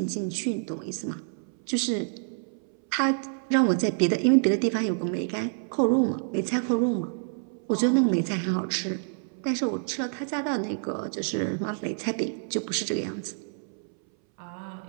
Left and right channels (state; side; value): silent; left; 60 dB below the other